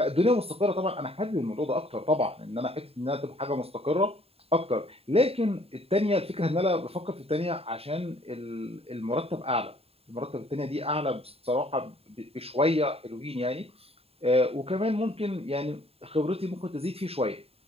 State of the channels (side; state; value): left; late; 0.29 ms